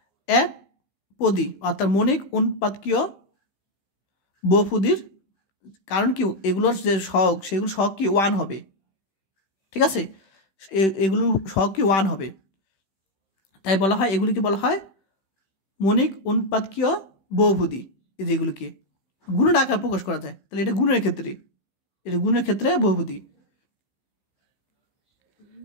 এক পদী অর্থাৎ মণিক অনুৎপাদকীয় বহুপদীর, কারণ কি এগুলোর যে সহগ সেগুলো সহগ কি 1 হবে। ঠিক আছে, এগুলো সহগ কি 1 হবে, তাই বলা হয় এগুলিকে বলা হয় মণিক অনুৎপাদকীয় বহুপদী। এই যেগুলোকে গুণের আকার প্রকাশ করা যায়, তাহলে এটা গুণের ক্ষেত্রে বহুপদী।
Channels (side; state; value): right; late; 16 ms